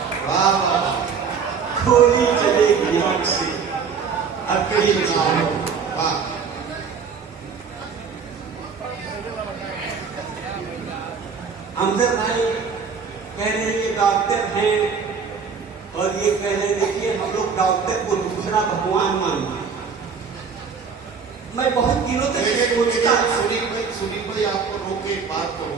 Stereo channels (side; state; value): left; quieter; 5.9 dB